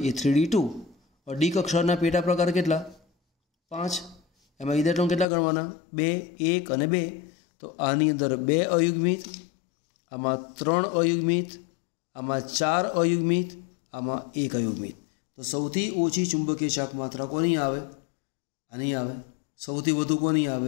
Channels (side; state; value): right; drops out; at 5.2 s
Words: ये 3d2 और डी कक्षाना पेटा प्रकार केटला 5। एमां इलेक्ट्रॉन केटला गणवाना 2 1 અને 2। तो आनी अंदर 2 अयुग्मित, आमां 3 अयुग्मित, आमां 4 अयुग्मित, आमां 1 अयुग्मित। तो सौथी ओછી चुंबकीय चाक मात्रा कोनी आवे, आनी आवे। सौथी वधु कोनी